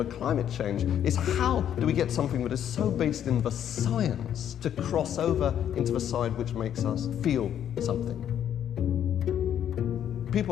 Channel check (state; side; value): quieter; right; 9.9 dB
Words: climate change is how do we get something that is so based in the science to cross over into the side which makes us feel something.